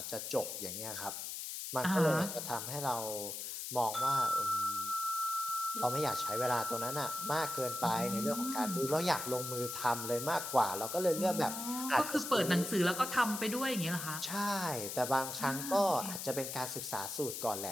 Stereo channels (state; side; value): noise; left; hiss, 6 dB below the sound